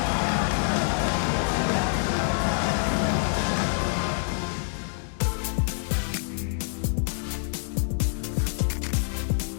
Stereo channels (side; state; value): right; silent; 61 dB below the other